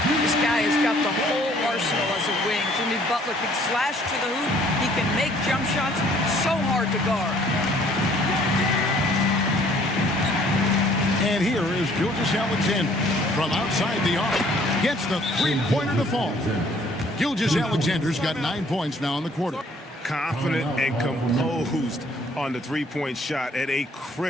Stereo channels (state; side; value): normal; both; correlation 0.59